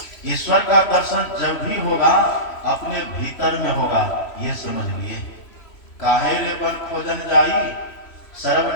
ईश्वर का दर्शन जब भी होगा अपने भीतर में होगा, ये समझ लिए। काहे रे बन खोजन जाई,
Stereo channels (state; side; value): late; right; 3.1 ms